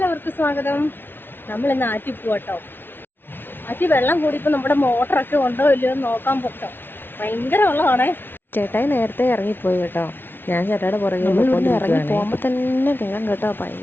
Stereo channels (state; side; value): late; right; 0.10 ms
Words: സ്വാഗതം. നമ്മൾ ഇന്ന് ആറ്റി പോട്ടോ. ആറ്റി വെള്ളം കൂടിയപ്പോൾ നമ്മുടെ മോട്ടറൊക്കെ ഉണ്ടോ ഇല്ലയോ എന്ന് നോക്കാൻ പോട്ടോ. ഭയങ്കര വെള്ളമാണേ. ചേട്ടായി നേരത്തെ ഇറങ്ങിപ്പോയി കേട്ടോ. ഞാൻ ചേട്ടായുടെ പുറകെ ഇറങ്ങി പോകുമ്പോൾ തന്നെ കേൾക്കാം കേട്ടോ,